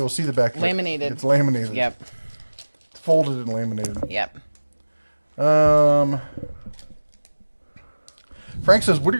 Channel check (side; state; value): both; inverted; correlation -1.00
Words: to see the back of it. Laminated. It's laminated. Yep. It's folded and laminated. Yep. Frank says, what are